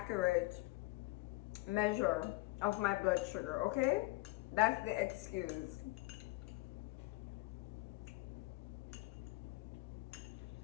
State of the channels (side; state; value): right; quieter; 21.3 dB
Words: measure of my blood sugar, okay? That's the excuse.